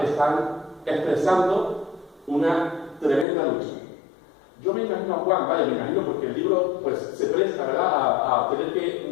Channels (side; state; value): right; drops out; at 3.2 s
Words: están expresando una tremenda lucha. Yo me imagino a Juan, me imagino, porque el libro pues se presta, ¿verdad?, a tener